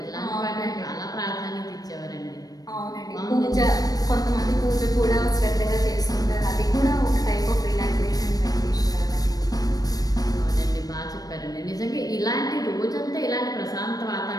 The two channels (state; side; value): late; right; 0.18 ms